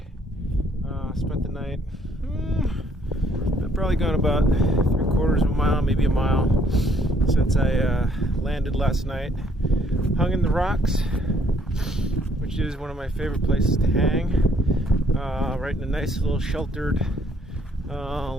Spent the night, I've probably gone about 3/4 of a mile, maybe a mile, since I landed last night. Hung in the rocks, which is one of my favorite places to hang. Right in a nice little sheltered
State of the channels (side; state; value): both; normal; correlation 0.66